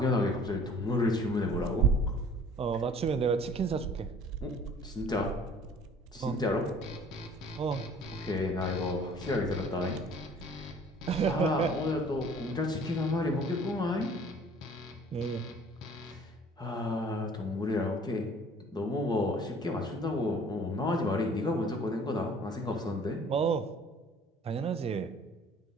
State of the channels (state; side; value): normal; both; correlation 0.52